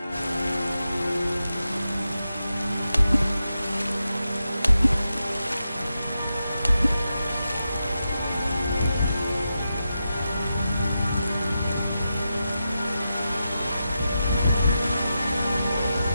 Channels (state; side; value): inverted; both; correlation -0.89